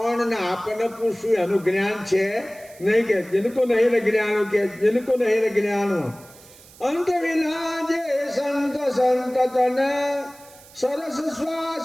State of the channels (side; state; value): right; noise; hiss, 23 dB below the sound